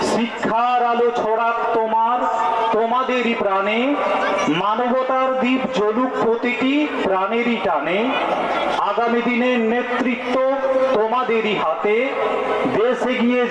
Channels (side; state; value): both; identical; correlation 1.00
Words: শিক্ষার আলো ছড়াক তোমাদেরই প্রাণে। মানবতার দ্বীপ জ্বলুক প্রতিটি প্রাণেরই টানে। আগামী দিনের নেতৃত্ব তোমাদেরই হাতে। দেশ এগিয়ে